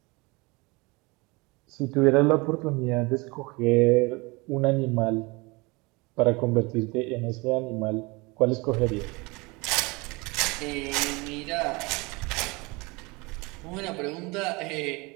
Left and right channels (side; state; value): left; quieter; 25.7 dB